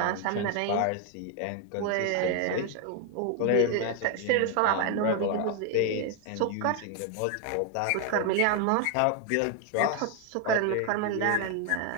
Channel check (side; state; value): both; different; correlation 0.01